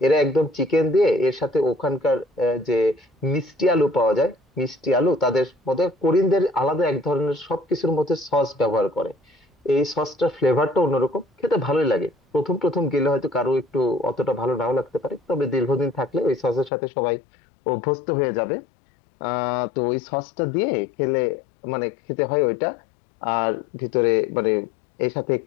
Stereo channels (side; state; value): right; drops out; at 16.7 s